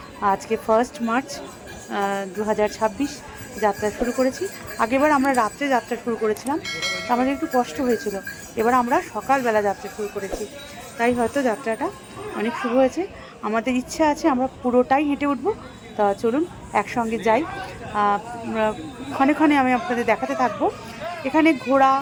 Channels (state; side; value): identical; both; correlation 1.00